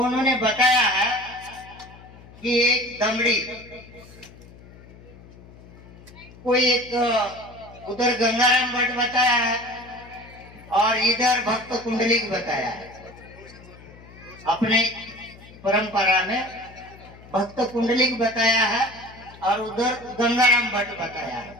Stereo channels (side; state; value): left; noise; hum, 21 dB below the sound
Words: बताया है कि एक दमड़ी, कोई एक उधर गंगाराम भट्ट बताया है और इधर भक्त कुंडलिक बताया है। अपने परंपरा में भक्त कुंडलिक बताया है और उधर गंगाराम भट्ट बताया